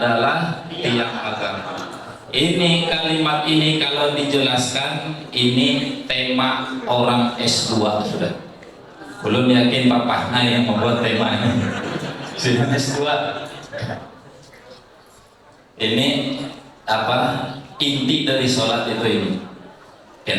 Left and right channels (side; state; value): both; identical; correlation 1.00